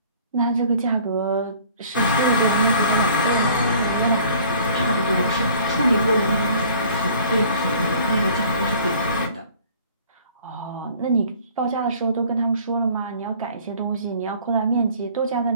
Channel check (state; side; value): inverted; both; correlation -0.52